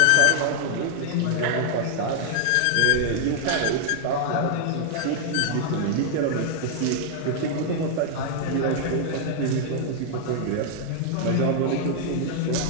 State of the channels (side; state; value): both; different; correlation -0.01